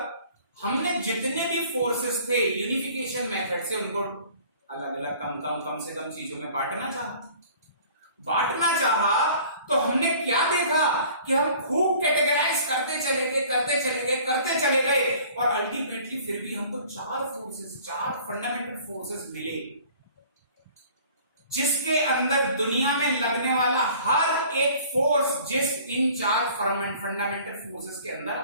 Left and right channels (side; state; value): both; inverted; correlation -0.50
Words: हमने जितने भी फोर्सेस थे यूनिफिकेशन मेथड से उनको अलग अलग कम से कम चीजों में बांटना चाहा तो हमने क्या देखा कि हम खूब कैटेगराइज करते चले गए और अल्टीमेटली फिर भी हमको चार फंडामेंटल फोर्सेस मिले, जिसके अंदर दुनिया में लगने वाला हर एक फोर्स इन चार फंडामेंटल फोर्सेस के अंदर